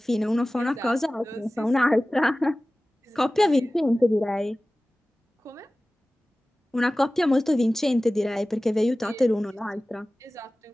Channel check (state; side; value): normal; both; correlation 0.97